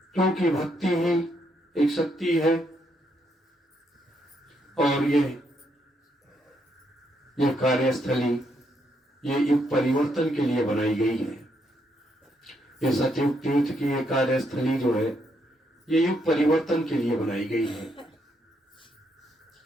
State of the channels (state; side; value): normal; both; correlation 0.76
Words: क्योंकि भक्ति ही एक शक्ति है और ये यह कार्यस्थली ये युग परिवर्तन के लिए बनाई गई है। ये सतयुग तीर्थ की ये कार्यस्थली जो है ये युग परिवर्तन के लिए बनाई गई है।